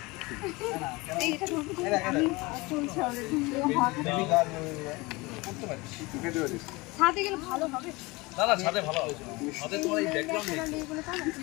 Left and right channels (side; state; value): right; quieter; 23.7 dB